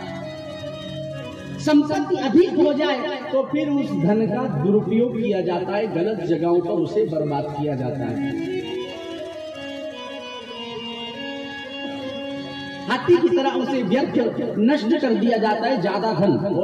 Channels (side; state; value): both; identical; correlation 1.00